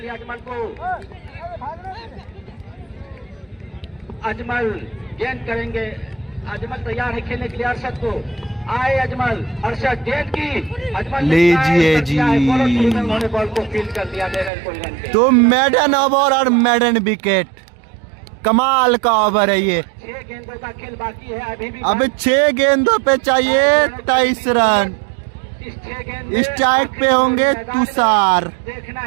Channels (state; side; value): drops out; left; at 14.5 s